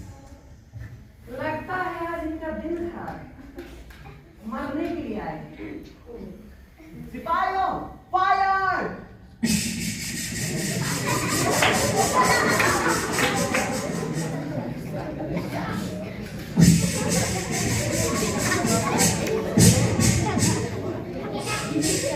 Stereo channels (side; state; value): both; identical; correlation 1.00